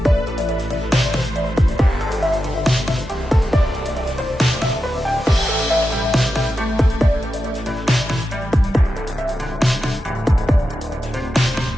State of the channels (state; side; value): normal; both; correlation 0.89